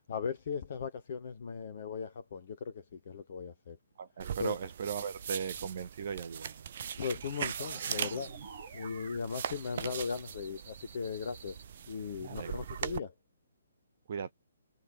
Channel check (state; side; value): inverted; both; correlation -0.66